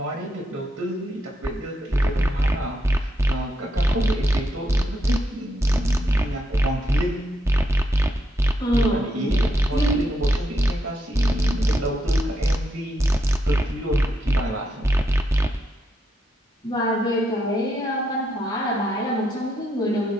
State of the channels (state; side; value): normal; both; correlation 0.80